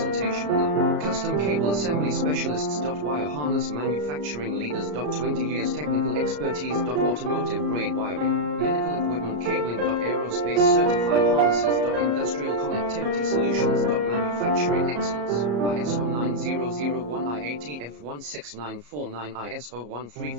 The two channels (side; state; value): left; late; 34 ms